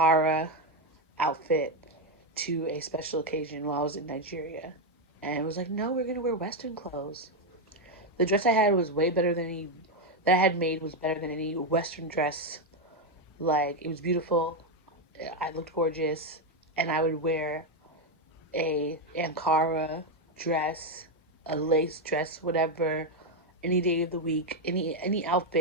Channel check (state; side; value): normal; both; correlation 0.05